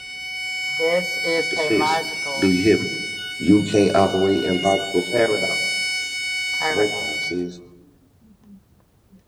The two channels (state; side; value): identical; both; correlation 1.00